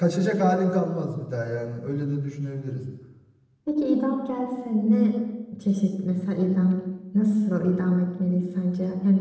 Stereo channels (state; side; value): identical; both; correlation 1.00